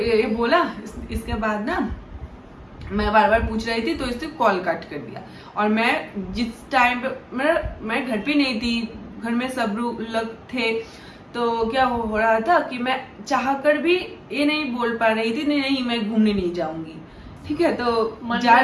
बोला, इसके बाद ना मैं बार पूछ रही थी, तो इसने कॉल कट कर दिया। और मैं जिस टाइम पे मैं घर पे नहीं थी, घर में सब लोग थे, तो क्या हो रहा था कि मैं चाह कर भी ये नहीं बोल पा रही थी, नहीं मैं घूमने नहीं जाऊंगी, ठीक है। तो मन जा में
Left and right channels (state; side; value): identical; both; correlation 1.00